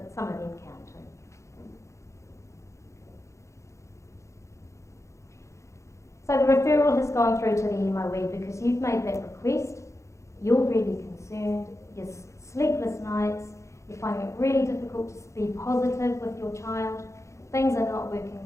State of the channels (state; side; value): late; right; 0.14 ms